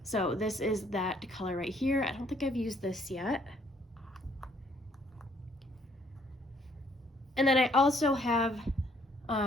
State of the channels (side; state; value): both; normal; correlation 0.65